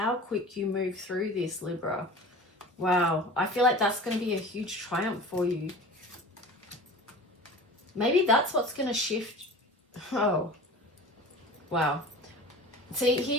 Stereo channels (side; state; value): both; normal; correlation 0.37